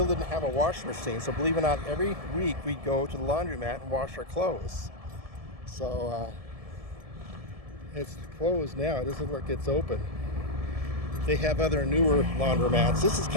didn't have a washing machine, so believe it or not, every week we'd go to the laundromat and wash our clothes. So it's closed now. It doesn't look like it's open. They have other newer laundromats. This is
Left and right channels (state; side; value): late; left; 1.7 ms